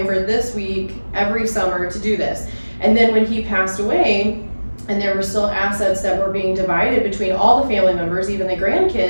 this week every summer to do this. And then when he passed away, and there were still assets that were being divided between all the family members, even the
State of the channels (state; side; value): inverted; both; correlation -1.00